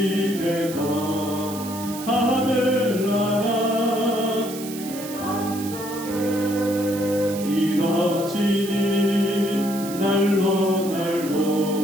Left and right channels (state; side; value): noise; right; hiss, 12 dB below the sound